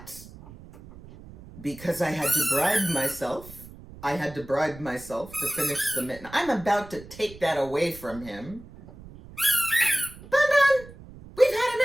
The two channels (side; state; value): right; noise; rumble, 18 dB below the sound